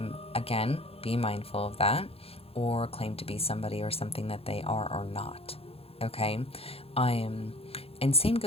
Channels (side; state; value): right; late; 0.28 ms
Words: Again, be mindful of that, or claim to be somebody or something that they are or not. Okay? And same